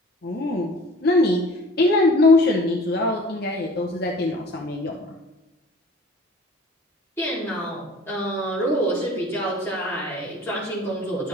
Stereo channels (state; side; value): normal; both; correlation 0.46